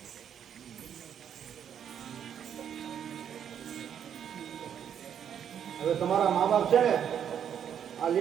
તમારા મા બાપ છે ને આ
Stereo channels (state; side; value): quieter; left; 8.8 dB